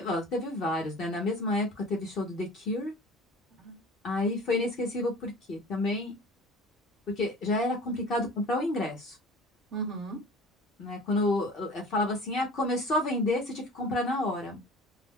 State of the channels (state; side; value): normal; both; correlation 0.42